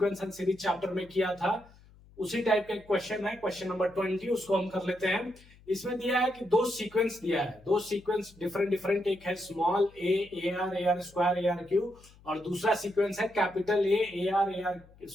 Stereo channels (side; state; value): left; noise; hum, 25 dB below the sound